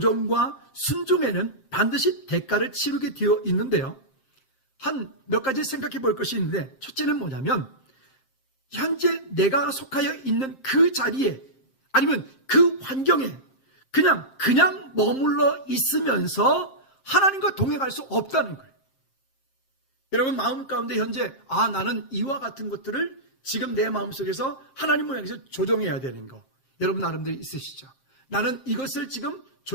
순종에는 반드시 대가를 치르게 되어 있는데요. 한 몇 가지 생각해 볼 것이 있는데, 첫째는 뭐냐면 현재 내가 속하여 있는 그 자리에, 아니면 그 환경에 그냥 머물러 있으면서 하나님과 동행할 수 없다는 거예요. 여러분 마음 가운데 현재 나는 이와 같은 것들을 지금 내 마음속에서 하나님을 향해서 조정해야 되는 거, 여러분 나름대로 있으시죠? 나는 이것을 지금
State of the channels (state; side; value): late; right; 7.6 ms